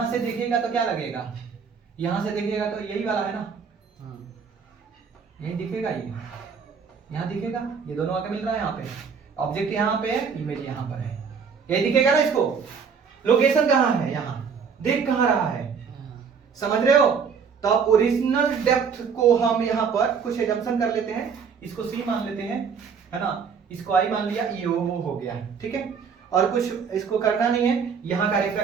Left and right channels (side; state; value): left; quieter; 6.2 dB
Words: से देखेगा तो क्या लगेगा, यहां से देखेगा तो यही वाला है ना, यही दिखेगा, ये यहां दिखेगा, ये दोनों आगे मिल रहा है, यहाँ पे ऑब्जेक्ट यहाँ पे है, इमेज यहाँ पर है, यही दिखेगा ना। इसको लोकेशन कहाँ है, यहाँ देख कहाँ रहा है, समझ रहे हो। तो अब ओरिजिनल डेप्थ को हम यहाँ पर कुछ एजम्पशन कर लेते हैं, इसको सी मान लेते हैं, है ना, इसको आई मान लिया, ई ओ हो गया, ठीक है। और कुछ इसको करना नहीं है, यहाँ का